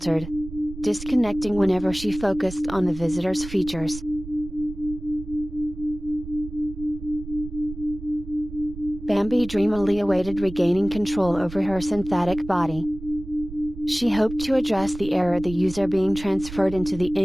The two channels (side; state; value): right; noise; rumble, 13 dB below the sound